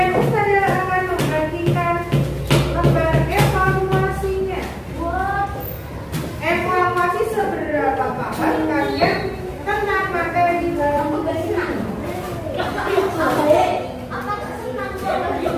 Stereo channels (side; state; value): both; identical; correlation 1.00